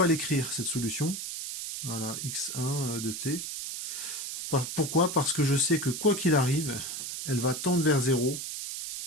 l'écrire, cette solution. Voilà, x1 de t. Pourquoi? Parce que je sais que quoi qu'il arrive, elle va tendre vers 0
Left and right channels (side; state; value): right; noise; hiss, 6 dB below the sound